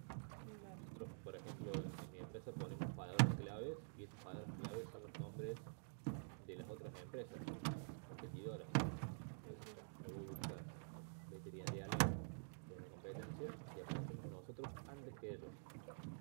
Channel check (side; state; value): left; silent; digital silence